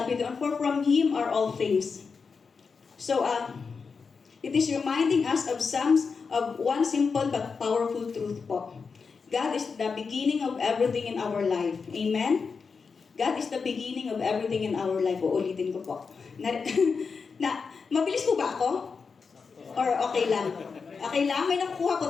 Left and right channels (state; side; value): quieter; right; 5.2 dB